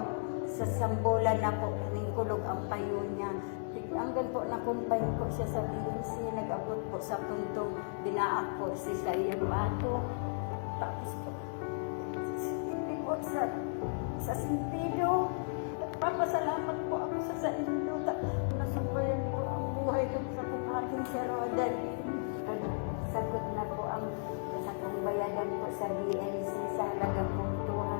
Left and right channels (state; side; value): silent; right; digital silence